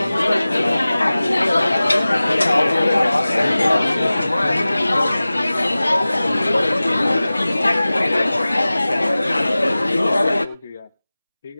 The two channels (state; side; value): inverted; both; correlation -0.98